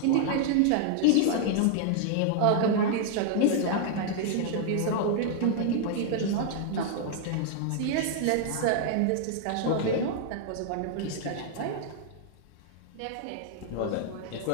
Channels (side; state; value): both; different; correlation -0.01